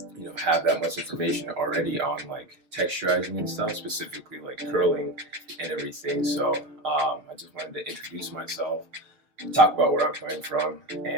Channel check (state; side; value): late; left; 6.7 ms